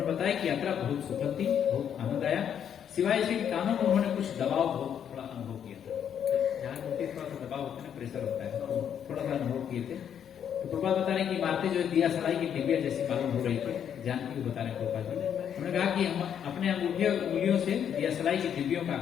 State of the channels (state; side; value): quieter; right; 8.8 dB